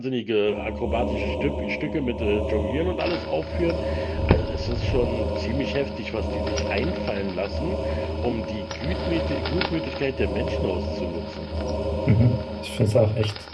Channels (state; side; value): identical; both; correlation 1.00